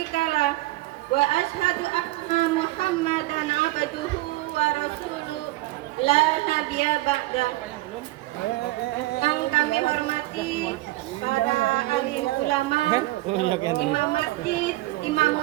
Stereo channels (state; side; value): quieter; left; 18.9 dB